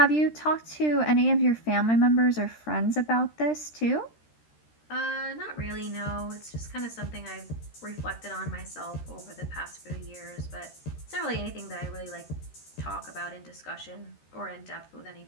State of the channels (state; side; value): late; right; 13 ms